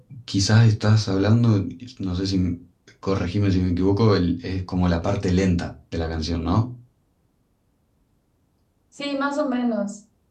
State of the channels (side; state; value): both; identical; correlation 1.00